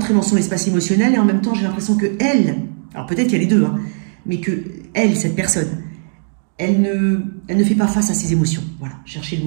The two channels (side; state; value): left; silent; digital silence